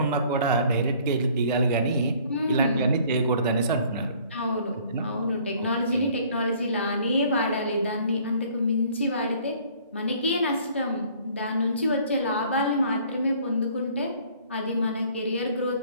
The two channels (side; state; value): both; inverted; correlation -0.56